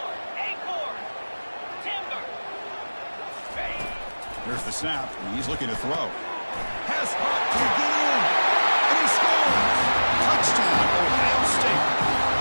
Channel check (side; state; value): both; inverted; correlation -1.00